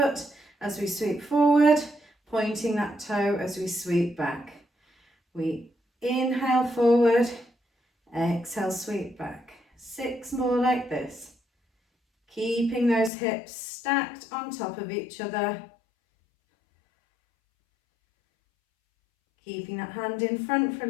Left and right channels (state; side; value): drops out; right; at 13.1 s